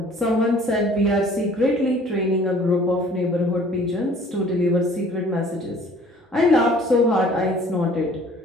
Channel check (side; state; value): both; normal; correlation 0.53